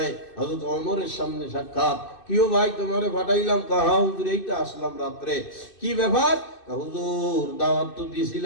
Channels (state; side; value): late; right; 2.6 ms